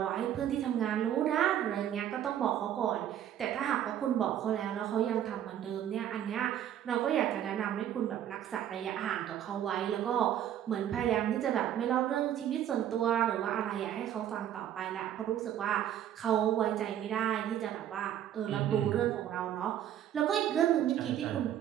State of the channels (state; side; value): quieter; left; 10.8 dB